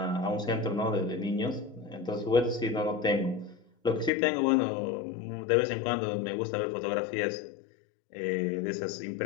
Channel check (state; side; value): drops out; right; at 4.1 s